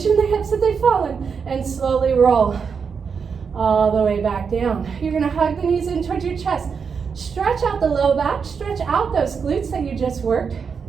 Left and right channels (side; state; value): left; quieter; 6.0 dB